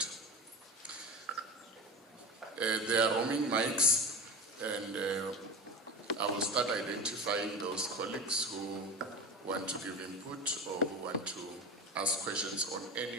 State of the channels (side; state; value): both; normal; correlation 0.27